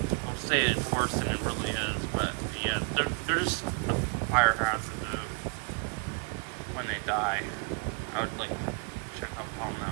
people say it's worse than it really is, but yeah, they're just a fire hazard though. When they die, I would like check up on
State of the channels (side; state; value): left; quieter; 35.1 dB